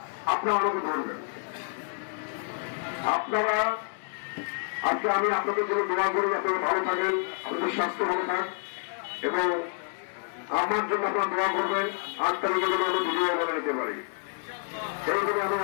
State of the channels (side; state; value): right; silent; 59 dB below the other